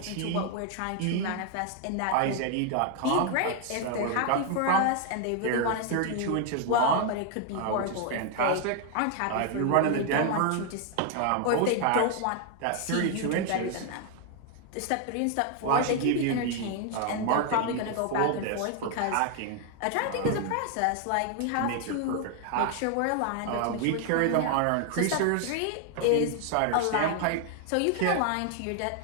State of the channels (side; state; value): both; different; correlation 0.00